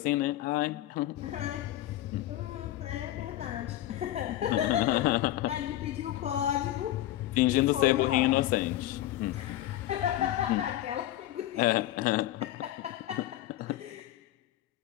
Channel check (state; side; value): quieter; right; 14.1 dB